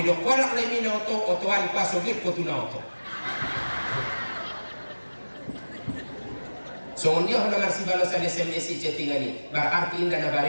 do kolak le mina otoan pasogir ko tuna oto. So dia hendak ngasih balas ada SMS chattingan ini. Berarti indah na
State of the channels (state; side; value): inverted; both; correlation -1.00